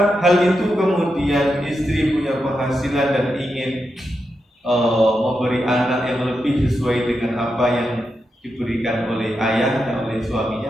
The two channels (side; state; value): both; normal; correlation 0.86